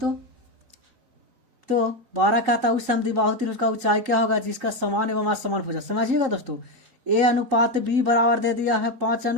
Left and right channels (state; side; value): late; left; 3.9 ms